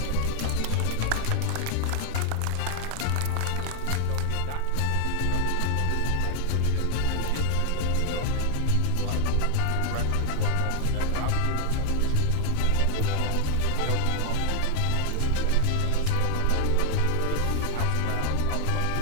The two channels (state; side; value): different; both; correlation 0.00